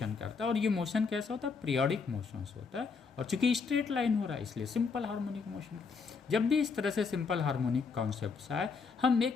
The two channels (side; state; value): right; quieter; 5.1 dB